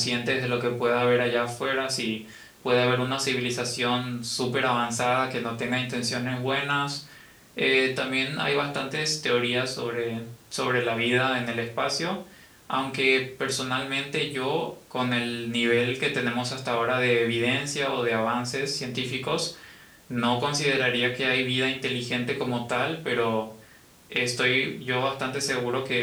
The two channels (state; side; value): identical; both; correlation 1.00